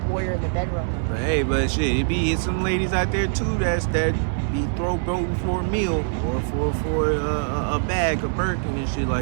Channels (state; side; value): silent; left; 57 dB below the other